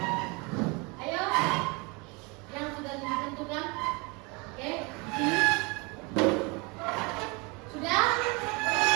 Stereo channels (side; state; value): left; quieter; 28.5 dB